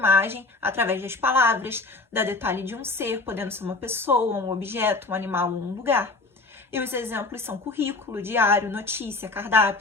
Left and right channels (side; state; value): right; quieter; 3.5 dB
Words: através das palavras, dá detalhe de um ser, podendo ser uma pessoa, um objeto, um animal ou um lugar. E os exemplos são currículo, diário, notícia,